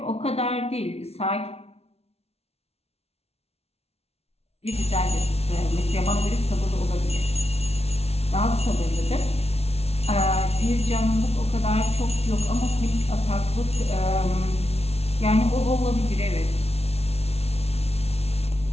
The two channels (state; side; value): late; right; 0.30 ms